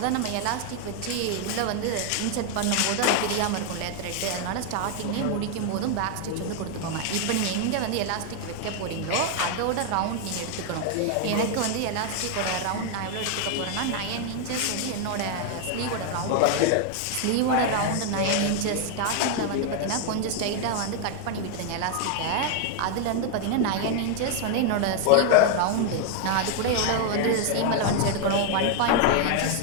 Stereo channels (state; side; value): different; both; correlation 0.00